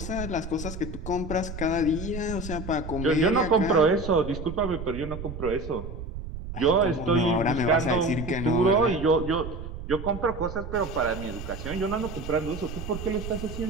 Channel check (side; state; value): right; noise; rumble, 9 dB below the sound